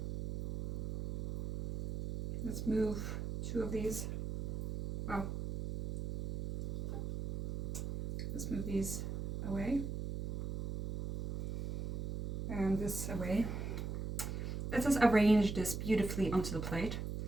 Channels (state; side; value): noise; right; hum, 4 dB below the sound